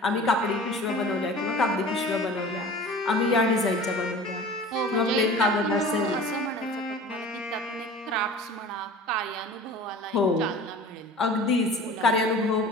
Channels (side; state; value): both; normal; correlation 0.41